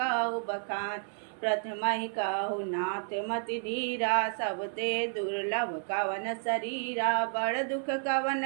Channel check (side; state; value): left; silent; 56 dB below the other